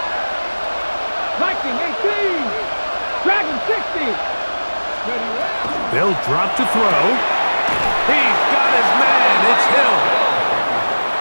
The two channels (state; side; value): inverted; both; correlation -1.00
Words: 18. Dragon 60. They'll drop to throw. He's got his man. It's Hill.